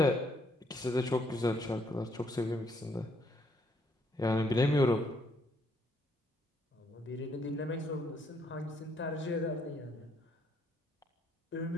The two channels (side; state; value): both; normal; correlation 0.70